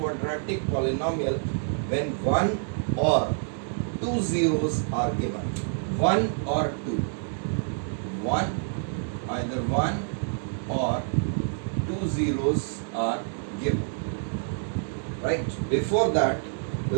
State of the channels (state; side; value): silent; left; digital silence